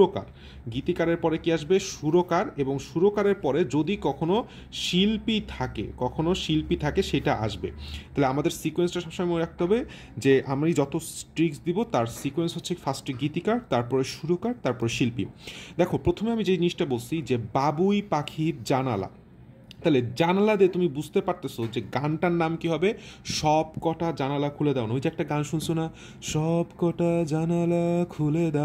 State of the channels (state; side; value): identical; both; correlation 1.00